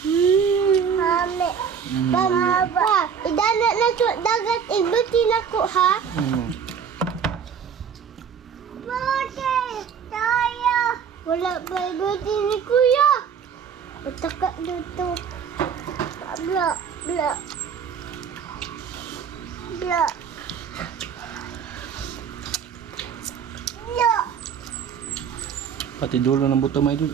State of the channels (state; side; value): quieter; left; 7.2 dB